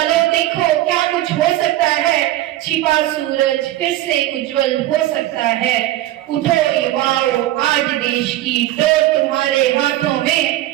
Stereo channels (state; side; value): quieter; left; 15.1 dB